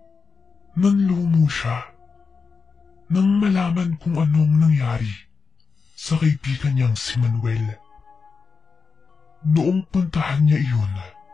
Nanlumo siya nang malaman kung anong nangyari sa kaibigan niyang si Manuel. Noong puntahan niya iyon,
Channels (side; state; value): right; quieter; 5.0 dB